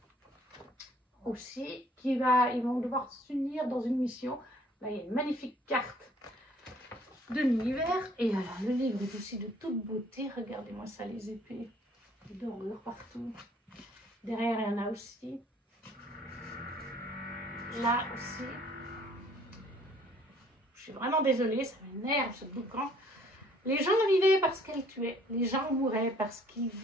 aussi, ils vont devoir s'unir dans une mission. Là, il y a une magnifique carte de l'univers, et alors, le livre est aussi de toute beauté, regardez-moi ça, les épées, les dorures partout. Derrière, il y en a aussi. Là aussi. Je suis vraiment désolée, ça m'énerve ce boucan. Les gens vivaient parce qu'elles tuaient. Les gens mouraient parce qu'ils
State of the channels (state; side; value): normal; both; correlation 0.59